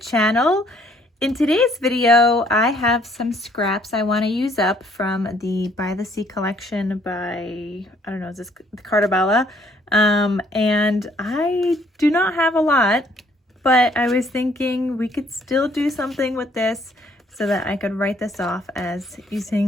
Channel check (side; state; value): both; normal; correlation 0.64